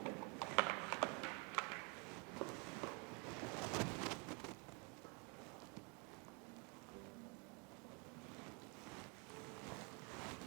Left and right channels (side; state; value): left; quieter; 33.4 dB